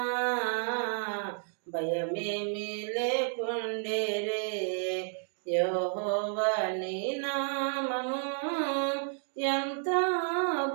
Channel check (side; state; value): left; silent; 57 dB below the other